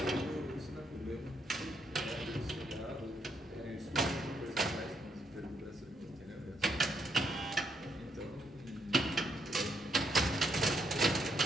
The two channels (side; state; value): both; normal; correlation 0.75